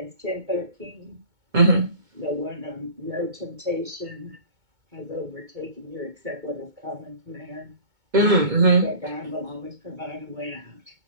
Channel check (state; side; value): late; left; 2.2 ms